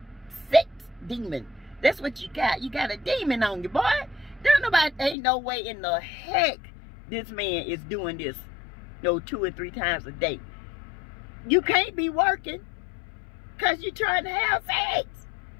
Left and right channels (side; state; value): right; drops out; at 5.2 s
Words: sex demon. That's what you got. You got a demon on you, boy. Ain't no way in the heck this man is doing this, 2 or 3 times a day. You can't be working because you're trying to have sex.